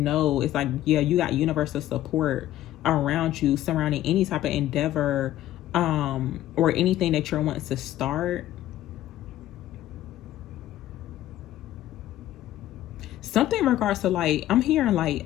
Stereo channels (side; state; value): right; quieter; 13.5 dB